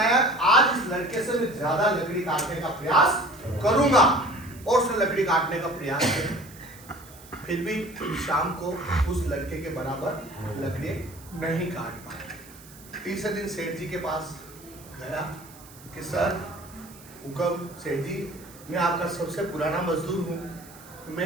आज इस लड़के से मैं ज्यादा लकड़ी काटने का प्रयास करूंगा, और उसने लकड़ी काटने का प्रयास किया। फिर भी शाम को उस लड़के के बराबर लकड़ी नहीं काट पाया। तीसरे दिन सेठ जी के पास गया कि सर हुक्म, सेठ जी मैं आपका सबसे पुराना मजदूर हूँ,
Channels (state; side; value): noise; right; hiss, 21 dB below the sound